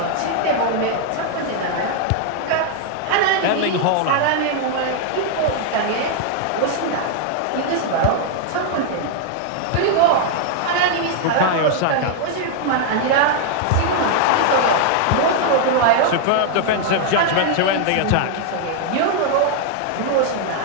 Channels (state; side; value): different; both; correlation 0.00